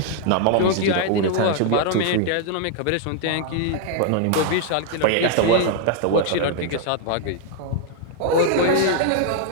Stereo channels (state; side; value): different; both; correlation 0.00